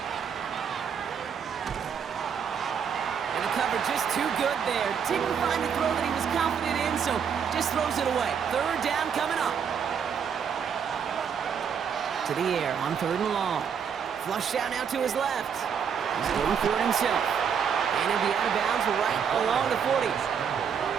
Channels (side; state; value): left; quieter; 7.3 dB